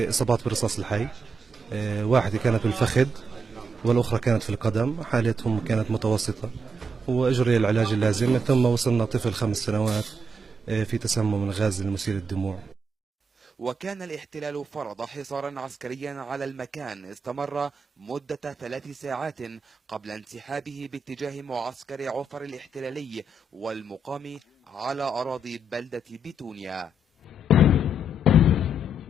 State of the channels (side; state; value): both; normal; correlation 0.80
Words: إصابات بالرصاص الحي، واحدة كانت بالفخذ والأخرى كانت في القدم، حالتهم كانت متوسطة وأجري العلاج اللازم. ثم وصلنا طفل 5 سنوات في تسمم الغاز المسيل للدموع. وكان الاحتلال فرض حصارا عسكريا على المكان استمر مدة 3 ساعات قبل انسحابه باتجاه معسكر عفر الاحتلالي والمقام على أراضي بلدة بيتونيا.